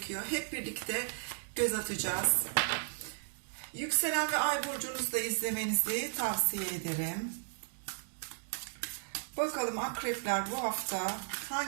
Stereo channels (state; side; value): silent; left; digital silence